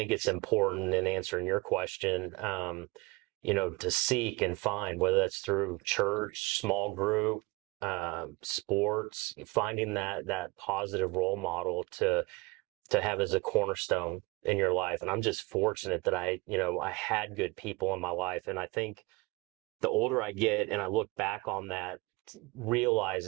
it's important in answering your question, to seek and find, whether that's through church, small group, sports, finding that positive role model to have as a cornerstone in your life. And I'm just fortunate that I had good people in my life. And I think the older I get and I look back on that,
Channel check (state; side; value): quieter; left; 24.1 dB